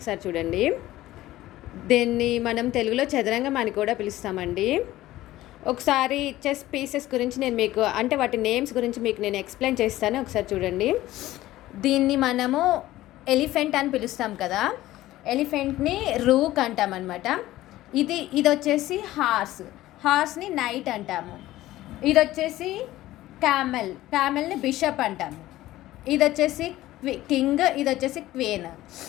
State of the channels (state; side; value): quieter; right; 15.8 dB